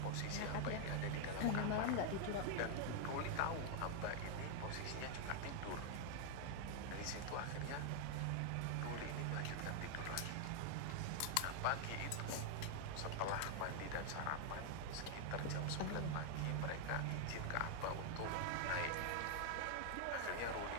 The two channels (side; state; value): both; different; correlation 0.00